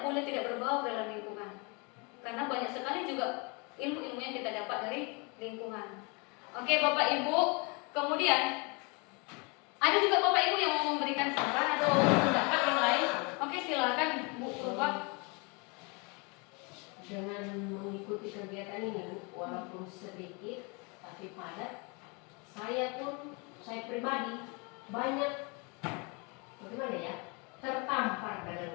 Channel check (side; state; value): right; quieter; 30.9 dB